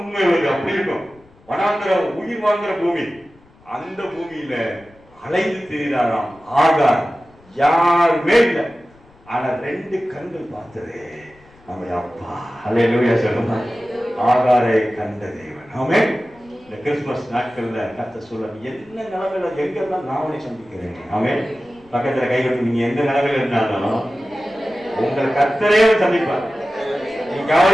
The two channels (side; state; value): left; noise; rumble, 28 dB below the sound